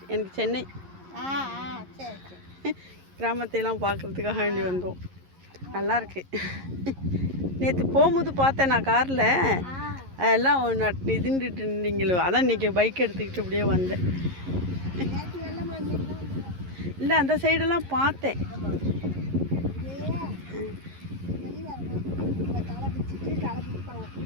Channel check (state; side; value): late; left; 11 ms